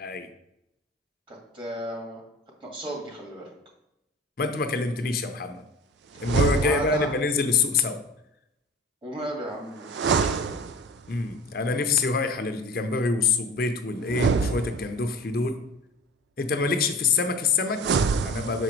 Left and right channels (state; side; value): normal; both; correlation 0.40